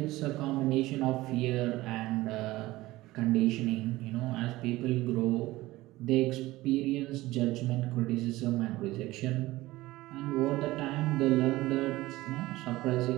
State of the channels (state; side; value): quieter; left; 18.3 dB